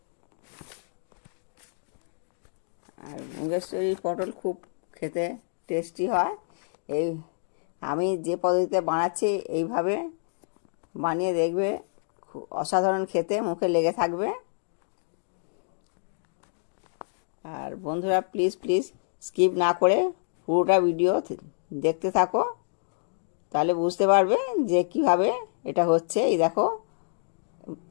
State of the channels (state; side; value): silent; right; digital silence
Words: আর মুগেশ্বরী পটল খুব খেতে টেস্টি হয়। এই আমি যে পদ্ধতিতে বানাচ্ছি এইভাবে বানিয়ে দেখবে, খুব অসাধারণ খেতে, মুখে লেগে থাকবে। আর বন্ধুরা প্লিজ প্লিজ স্কিপ না করে পুরোটা ভিডিও দেখতে থাকো, তাহলে বুঝতে পারবে যে কিভাবে এটা হচ্ছে। এই দেখো,